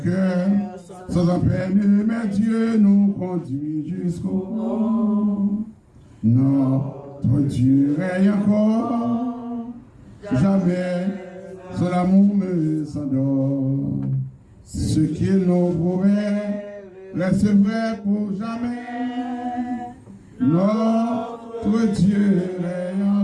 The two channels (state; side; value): identical; both; correlation 1.00